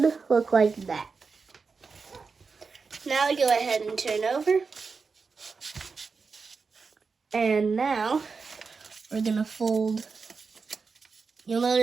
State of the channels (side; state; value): left; quieter; 4.9 dB